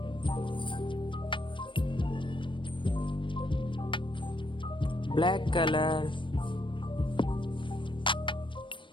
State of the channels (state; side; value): late; right; 0.24 ms